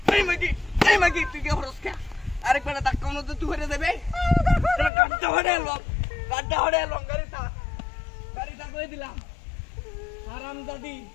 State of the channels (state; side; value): drops out; right; at 4.9 s